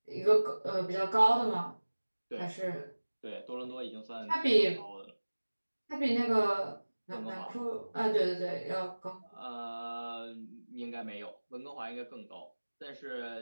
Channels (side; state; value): both; inverted; correlation -1.00